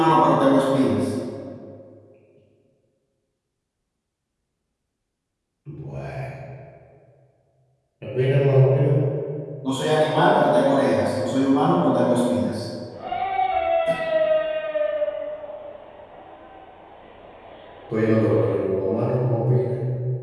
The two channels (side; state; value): both; identical; correlation 1.00